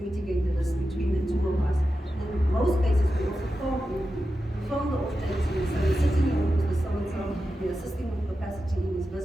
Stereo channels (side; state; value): both; normal; correlation 0.91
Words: the risk between the two of us. And in most cases, we also phone the off-taker, so you're sitting in with so-and-so, you're assisting with capacity in his